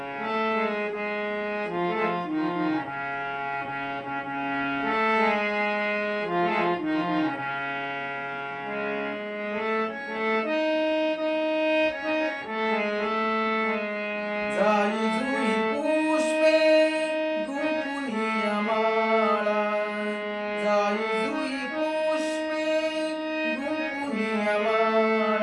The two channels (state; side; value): identical; both; correlation 1.00